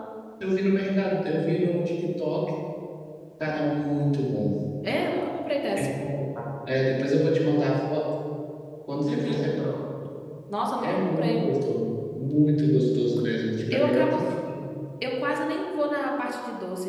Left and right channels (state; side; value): identical; both; correlation 1.00